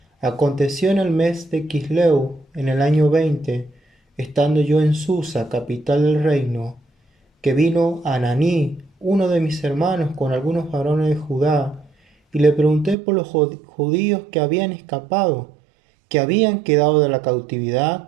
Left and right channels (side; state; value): left; drops out; at 13.0 s